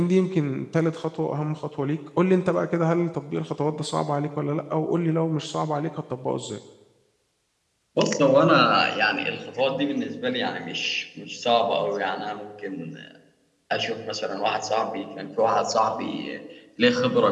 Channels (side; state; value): both; identical; correlation 1.00